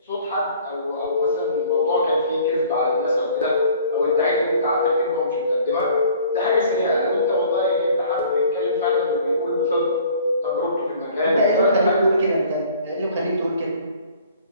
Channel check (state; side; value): inverted; both; correlation -0.52